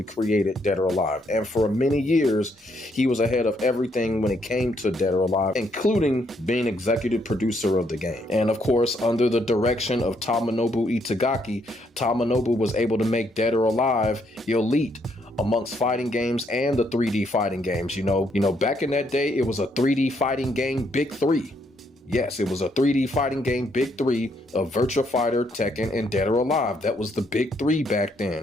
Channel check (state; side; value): normal; both; correlation 0.73